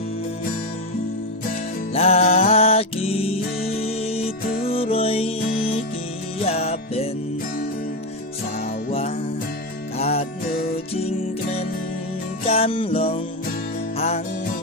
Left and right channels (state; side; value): normal; both; correlation 0.10